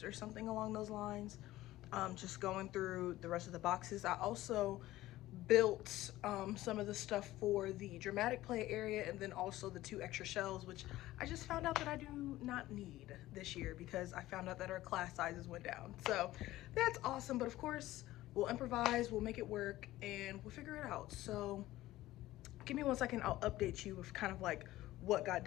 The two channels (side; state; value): right; quieter; 16.1 dB